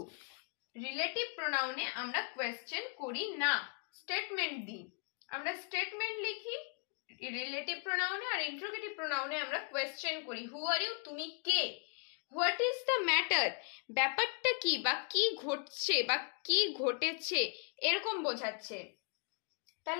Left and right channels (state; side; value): quieter; right; 39.8 dB